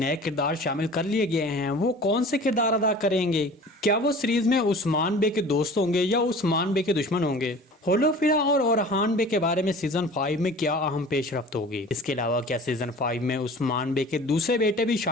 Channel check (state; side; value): normal; both; correlation 0.42